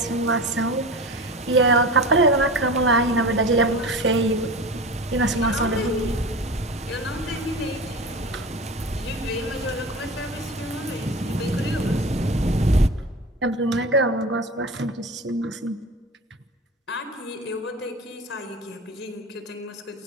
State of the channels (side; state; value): both; normal; correlation 0.31